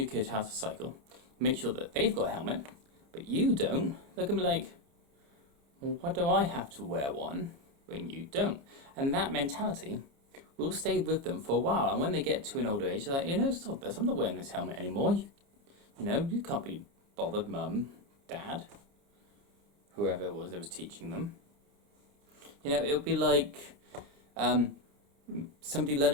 kid how to cycle, make sure that they've got a helmet, but you don't, they're going to be like, well, why do I have to wear one when you don't? And that mentality will stay with them for a while. And when they get to an older age, they're like, stop this, I'm not wearing this helmet anymore. You can't be bothered, mum, dad, whoever it was that was teaching them. It'll be like somebody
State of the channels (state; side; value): late; left; 29 ms